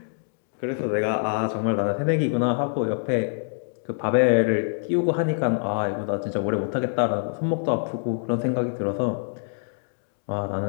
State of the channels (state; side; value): silent; right; digital silence